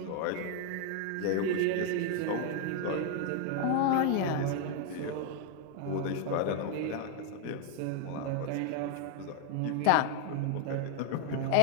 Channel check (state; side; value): different; both; correlation 0.00